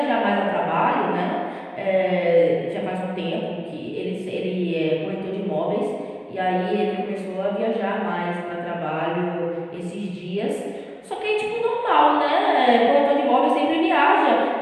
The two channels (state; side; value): identical; both; correlation 1.00